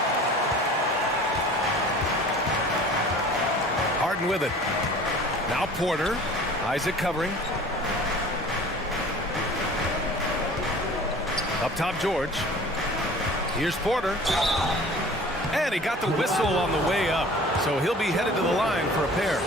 Harden with it. Now Porter. Isaac covering. Up top, George. Here's Porter. And he got the whistle on the way up. So he'll be headed to the line for a pair.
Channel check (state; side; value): normal; both; correlation 0.45